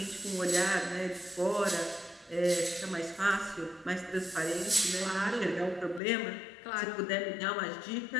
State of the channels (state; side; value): drops out; right; at 6.0 s